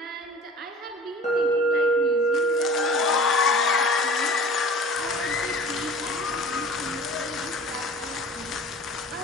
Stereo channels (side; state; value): both; normal; correlation 0.43